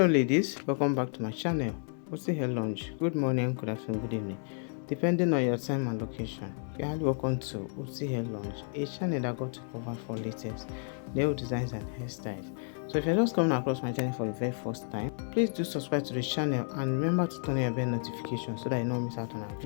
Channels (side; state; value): right; silent; 55 dB below the other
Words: ladies, welcome back to my channel. Osi Hair Lounge. Good morning, good afternoon, good evening, depending on your time and location. You're highly welcome to Osi Hair Lounge, a channel that got to cover for latest nail designs and hairstyles. So if you're just coming across my channel for the very first time, please do subscribe to the channel and remember to turn on your bell notification so that you don't miss out on our